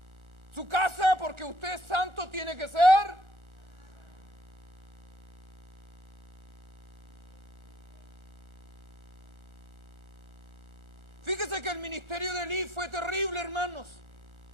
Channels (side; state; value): left; late; 1.4 ms